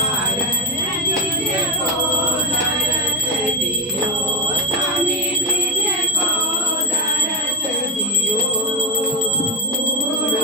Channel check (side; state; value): both; normal; correlation 0.14